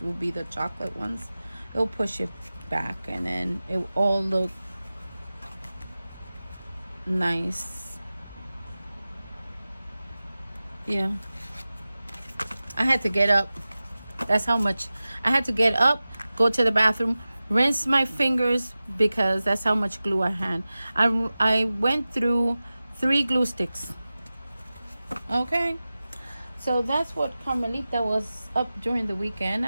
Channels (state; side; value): inverted; both; correlation -0.96